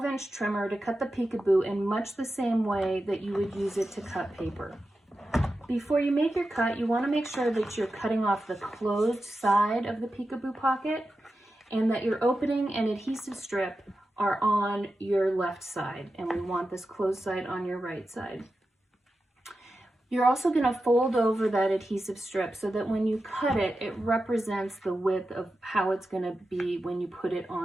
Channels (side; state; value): both; normal; correlation 0.91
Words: trimmer to cut the peekaboo in much the same way that you would use it to cut paper. Before you make your cut, you want to make sure that you're cutting off the closed side of the peekaboo pocket and that your opening and adhesive strip are on your left side, and we want this closed side on your right side. You're also going to fold over that adhesive strip so that when you cut it, it represents the width of how it's going to be when you put it